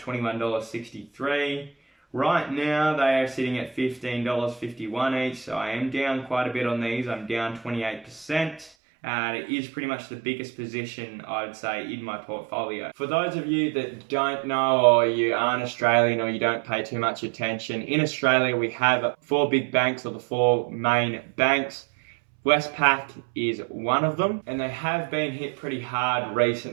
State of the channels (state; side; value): drops out; left; at 8.7 s